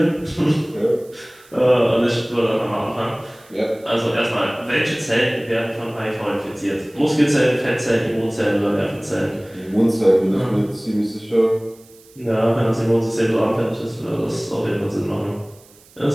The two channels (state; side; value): noise; right; hiss, 27 dB below the sound